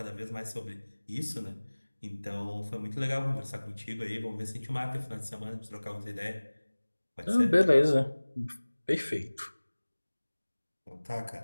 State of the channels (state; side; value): inverted; both; correlation -1.00